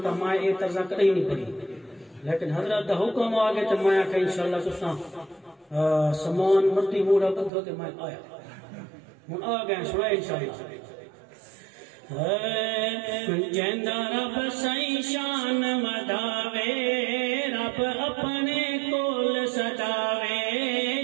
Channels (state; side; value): drops out; left; at 7.5 s